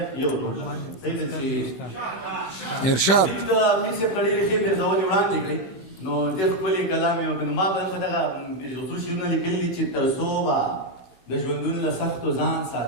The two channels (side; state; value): right; late; 16 ms